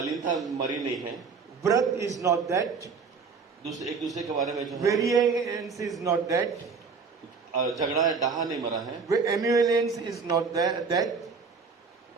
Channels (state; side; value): quieter; left; 5.1 dB